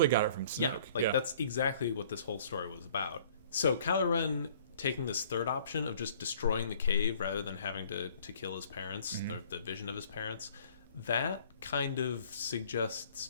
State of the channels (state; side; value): inverted; both; correlation -0.56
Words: got it from Snoke. Yeah, that's exactly what this whole story was about. So Kylo Ren taking this third option of just destroying the cave rather than having to kill his parents, mm-hmm. the vision of his parents, that kind of suggests